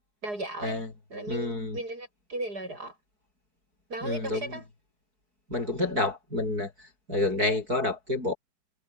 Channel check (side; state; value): left; late; 4.6 ms